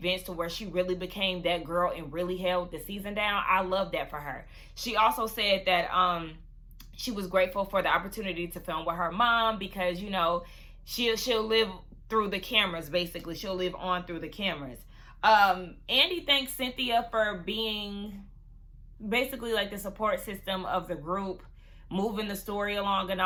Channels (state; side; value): identical; both; correlation 1.00